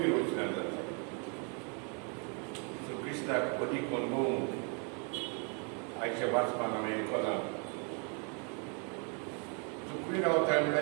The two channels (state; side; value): quieter; left; 37.5 dB